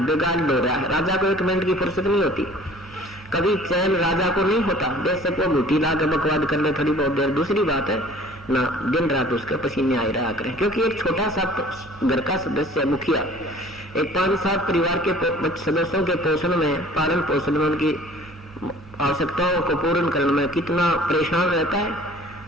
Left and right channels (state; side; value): normal; both; correlation 0.50